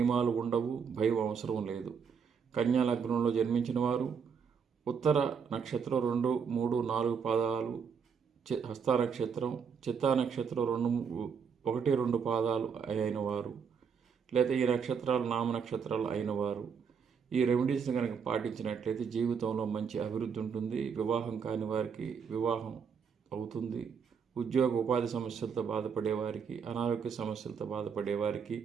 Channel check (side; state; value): left; quieter; 6.5 dB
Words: ఉండవు, భయం అవసరం లేదు. కన్యా లగ్నంలో జన్మించిన వారు ఉత్తర నక్షత్రం 2, 3, 4 పాదాలు, హస్త నక్షత్రం, చిత్తా నక్షత్రం 1, 2 పాదాలు అయిన వారు, లేదా ఈ నక్షత్రాలు నామ నక్షత్రాలు అయిన వారు ఈ రెమెడీస్ని కనుక పాటించినట్లయితే జీవితంలో మంచి అభివృద్ధి ఉంటుంది. వివాహం కాని వారికి వివాహం అవుతుంది. ఉద్యోగ ఉపాధి సమస్యలతో బాధపడే వారికి, అనారోగ్య సమస్యలతో బాధపడే వారికి